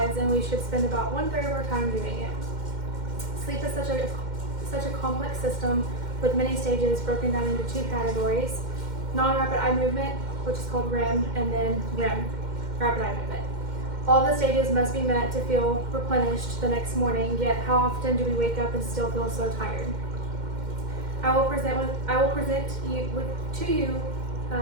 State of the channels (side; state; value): left; late; 2.1 ms